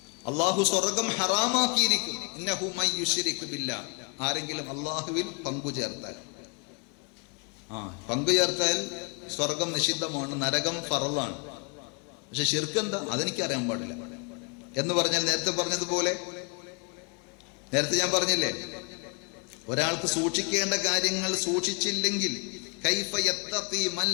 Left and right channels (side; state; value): right; quieter; 34.6 dB